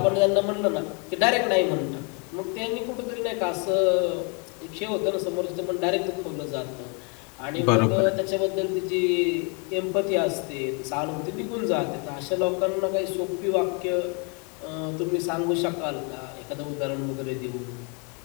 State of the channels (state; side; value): quieter; right; 35.1 dB